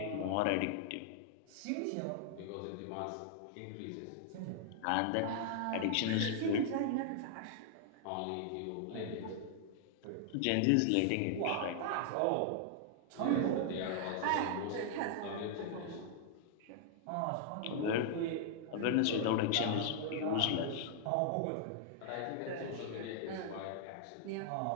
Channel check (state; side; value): different; both; correlation -0.01